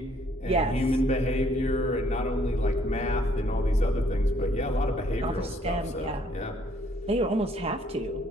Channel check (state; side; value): normal; both; correlation 0.65